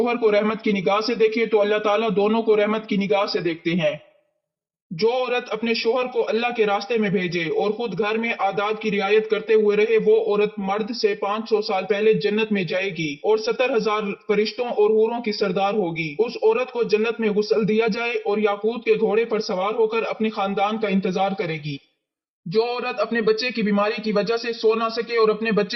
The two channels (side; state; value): both; identical; correlation 1.00